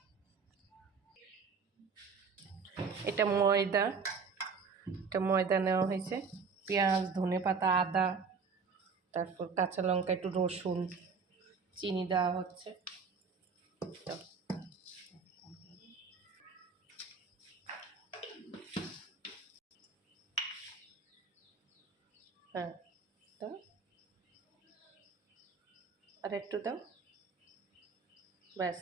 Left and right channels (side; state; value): left; quieter; 5.3 dB